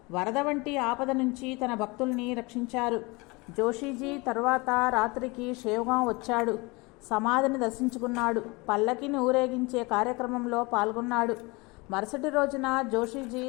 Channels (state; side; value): quieter; right; 25.5 dB